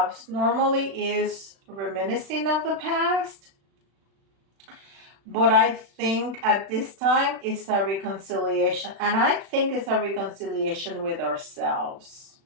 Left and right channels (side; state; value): left; late; 36 ms